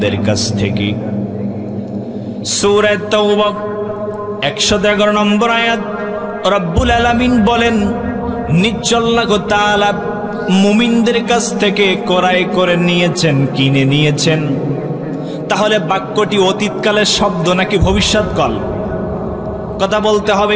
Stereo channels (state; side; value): identical; both; correlation 1.00